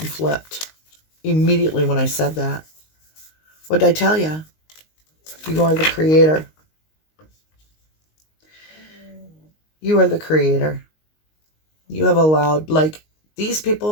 flipped immediately when I said that. What did I tell you? You are the creator. You are the creator. You have allowed, like, these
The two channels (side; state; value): right; late; 19 ms